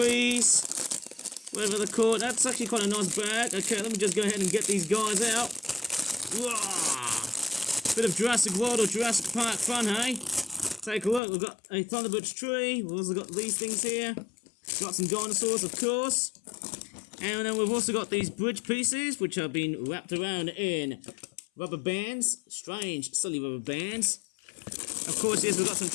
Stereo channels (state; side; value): drops out; right; at 11.2 s